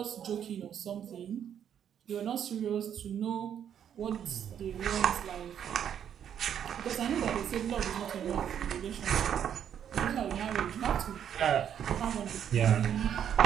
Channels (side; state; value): left; quieter; 9.1 dB